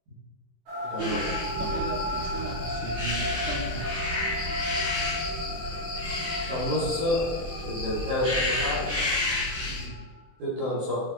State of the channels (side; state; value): left; late; 24 ms